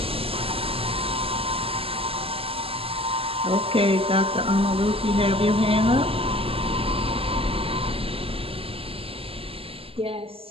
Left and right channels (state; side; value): late; left; 0.27 ms